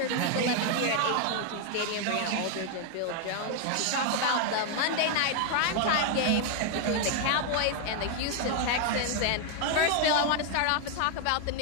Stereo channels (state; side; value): different; both; correlation 0.00